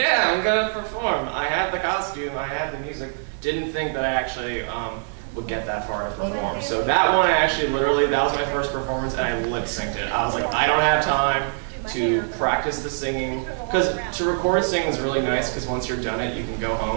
I'm gonna perform. I had the costume, I had the music. Didn't think that I actually would get that far to perform. So that one, I actually literally, that was my first performance, and I lip synced it. I was like, I don't have time to practice the singing, because to record singing is really nice, because once you're done it, you can go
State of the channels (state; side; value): silent; left; 61 dB below the other